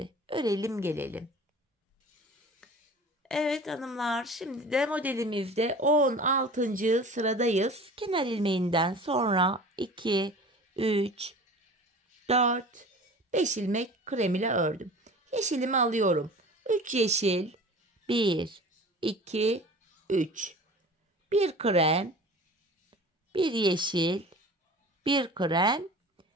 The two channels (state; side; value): normal; both; correlation 0.40